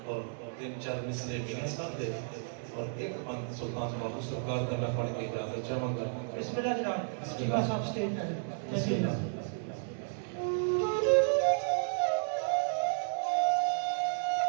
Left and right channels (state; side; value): silent; left; digital silence